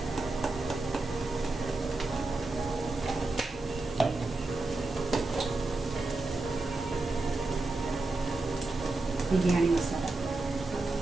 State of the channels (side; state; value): left; quieter; 3.2 dB